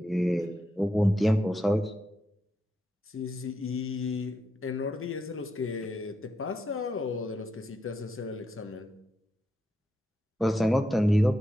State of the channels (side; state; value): both; normal; correlation 0.85